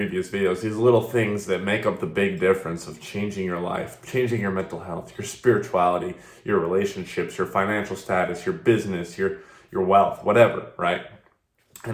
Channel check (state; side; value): identical; both; correlation 1.00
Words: videos, these little things that make up the big difference of changing your life, changing your mental health, your spirituality, your relationships, your financial status, your business, your wealth, whatever, right?